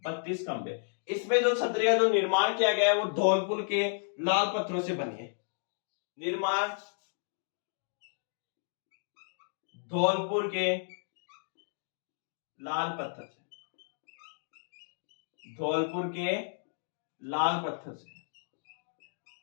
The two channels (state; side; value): silent; right; digital silence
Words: 32 खंबे। इसमें जो छतरी का जो निर्माण किया गया है वो धौलपुर के लाल पत्थरों से बनी है। निर्माण धौलपुर के लाल पत्थर से, धौलपुर के लाल पत्थर से,